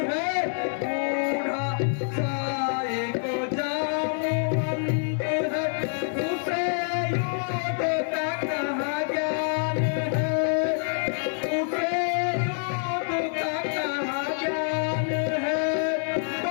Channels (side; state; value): right; silent; 61 dB below the other